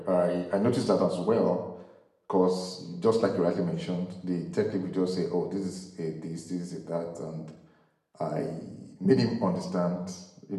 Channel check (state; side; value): identical; both; correlation 1.00